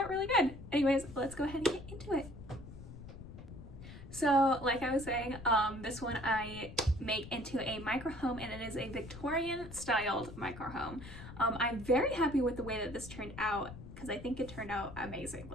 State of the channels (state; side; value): noise; left; rumble, 13 dB below the sound